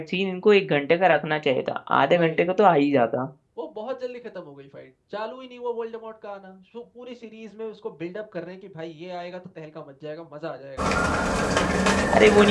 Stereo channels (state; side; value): identical; both; correlation 1.00